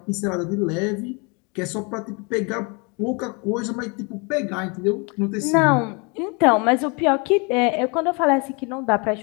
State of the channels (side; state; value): right; quieter; 31.4 dB